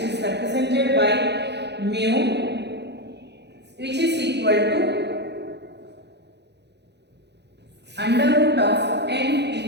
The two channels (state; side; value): late; left; 0.50 ms